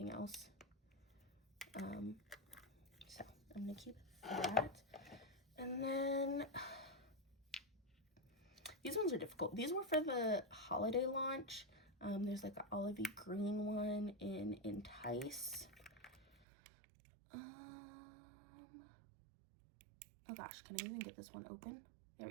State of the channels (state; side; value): drops out; left; at 16.4 s